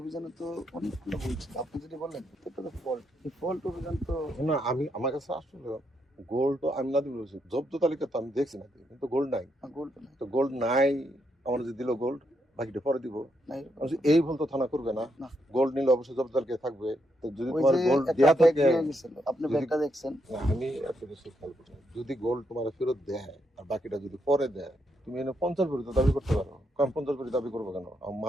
তো অনেকগুলো ভুল ছিল। আপনি যদি বললেন এটা তো ফল্ট, এই ফল্ট অভিযান তো না, আমি আমার কাছে আসলে গোল্ড তো আমি না দিবি, জব্দ তালিকা তো আমি দেখছি না, কিন্তু গোল্ড নাই। গোল্ড নাই, তো গোল্ড নাই, আমার যে দিল গোল্ড বাকিটা পরে দিব। নাই এই ভুল তো থানা করবে না, না। গোল্ড নিলে অবশ্যই জব্দ তালিকায় থাকবে। তো যদি ওই তোমার যে গোল্ড একটা দেয়া ব্যাগ থাকে, নিয়ে গেছিল, আপনি যদি- ব্যাগটা দেখছেন? না, আমি এত কিছু খেয়াল করি না। যদি গোল্ড তোমার ফেরত দেয় আর বাকিটা যদি পরে দেয়, তুমি এনে 50 ভরি তো দাবি করতে পারো। কারণ 50 ভরি দাবি করবো কেন?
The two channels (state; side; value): normal; both; correlation 0.79